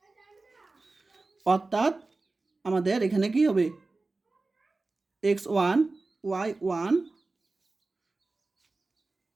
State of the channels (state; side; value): quieter; left; 3.4 dB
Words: অর্থাৎ আমাদের এখানে কি হবে, x1 y1